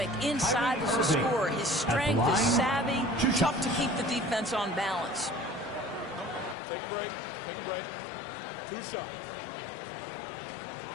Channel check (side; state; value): right; drops out; at 6.6 s